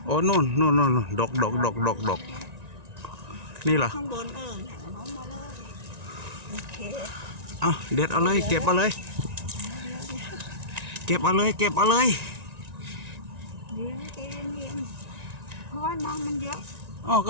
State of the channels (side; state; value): left; late; 1.9 ms